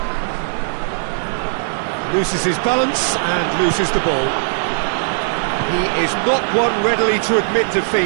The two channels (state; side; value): silent; left; 61 dB below the other